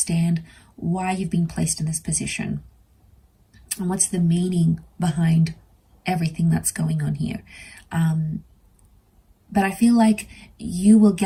why you've been placed in this position and what's the meaning behind everything that's going on here. But I feel like you will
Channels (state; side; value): identical; both; correlation 1.00